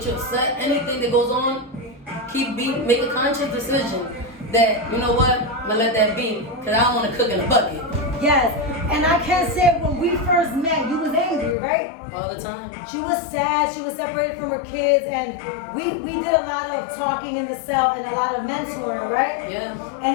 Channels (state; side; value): drops out; right; at 11.6 s